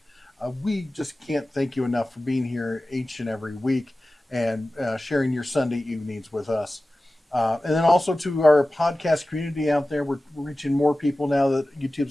we just can't thank you enough for being here each and every week and sharing your Sunday evenings with us. And then also to our podcast community out there, we're reaching more people now that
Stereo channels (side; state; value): both; normal; correlation 0.96